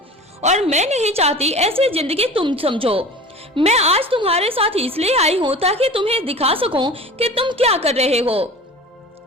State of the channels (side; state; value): both; normal; correlation 0.38